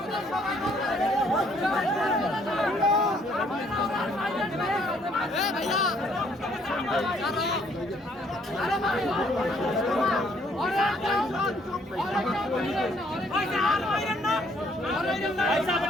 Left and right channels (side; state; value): both; normal; correlation 0.65